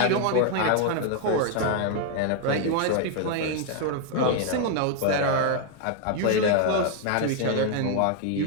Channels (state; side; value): different; both; correlation 0.00